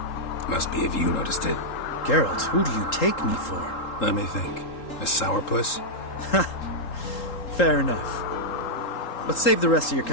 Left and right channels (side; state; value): right; late; 3.8 ms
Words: Must be if you noticed it. Geralt, who do you take me for? Let me think. A sourpuss? Fair enough. But save the rest of your